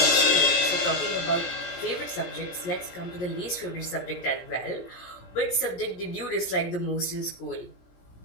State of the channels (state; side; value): late; right; 17 ms